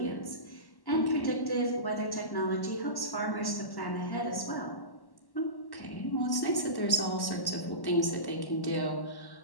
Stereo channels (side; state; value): right; late; 1.1 ms